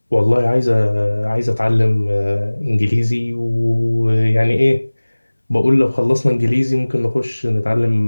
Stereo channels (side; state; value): both; inverted; correlation -1.00